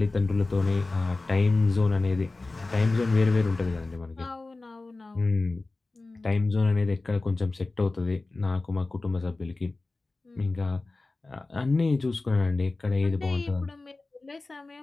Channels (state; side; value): quieter; right; 3.3 dB